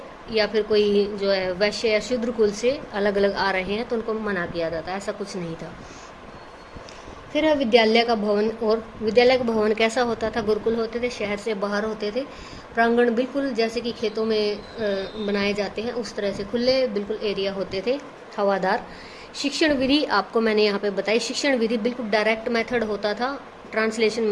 या फिर कोई जो है वैश्य या शूद्र कुल से अलग अलग आ रहे हैं तो उनको मना किया जाता, ऐसा कुछ नहीं था। फिर है विद्यालय का भवन। और विद्यालय का भवन कैसा होता था? गुरुकुल होते थे, शहर से बाहर होते थे, प्रांगण बिल्कुल जैसे कि खेतों में बनाए जाते हैं उस तरह से खुले बिल्कुल एरिया होते थे, हवादार। शिक्षण विधि आपको मैंने यहाँ पे बताई। शिक्षण विधि बिल्कुल डायरेक्ट मेथड होता था, ट्रांसलेशन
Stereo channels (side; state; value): both; identical; correlation 1.00